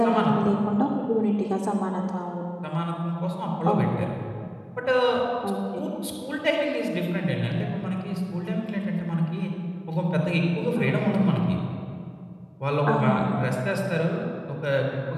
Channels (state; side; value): identical; both; correlation 1.00